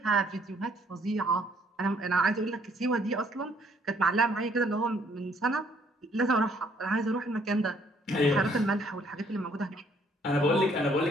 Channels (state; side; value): normal; both; correlation 0.64